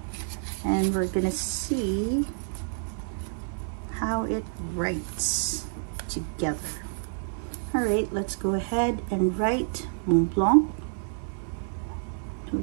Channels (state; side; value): silent; left; 59 dB below the other